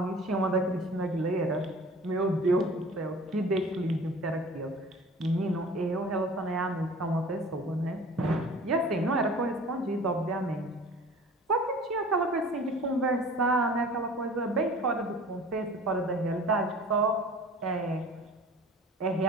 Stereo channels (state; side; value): normal; both; correlation 0.44